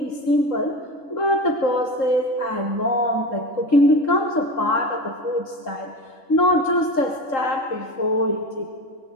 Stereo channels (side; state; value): right; late; 3.8 ms